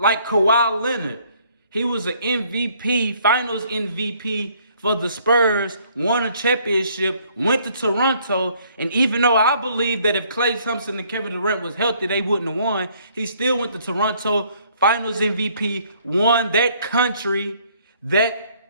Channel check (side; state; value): both; inverted; correlation -0.63